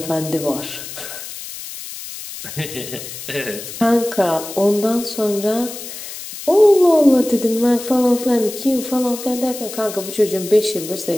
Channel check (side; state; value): left; noise; hiss, 11 dB below the sound